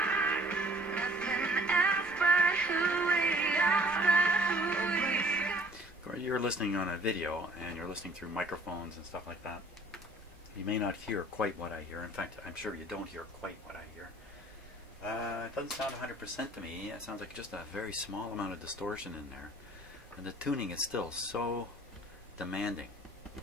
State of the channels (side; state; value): both; normal; correlation 0.54